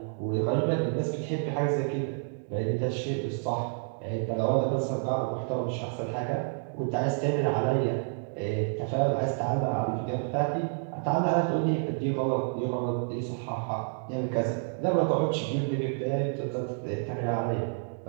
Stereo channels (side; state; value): left; silent; digital silence